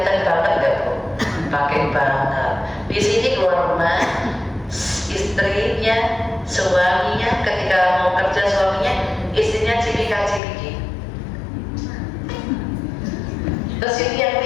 banget nggak Bu? Pakai banget. Di sini keluar rumah, istrinya, suaminya, ketika mau kerja suaminya, istrinya cipika-cipiki. Terus ini yang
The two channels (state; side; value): drops out; right; at 10.4 s